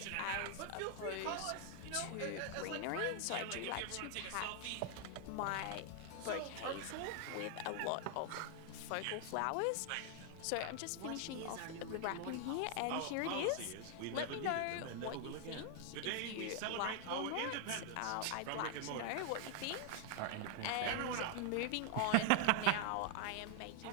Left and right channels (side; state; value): both; different; correlation 0.00